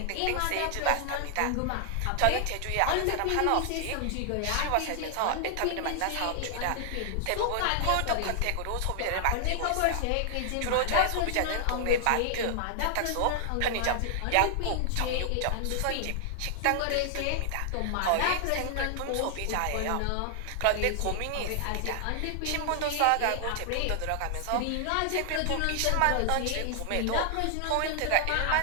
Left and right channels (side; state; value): both; different; correlation 0.00